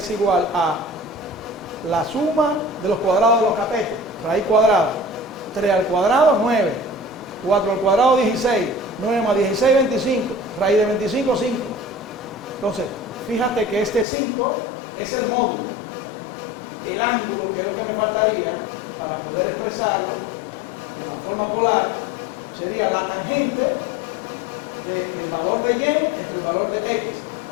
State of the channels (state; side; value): drops out; right; at 14.1 s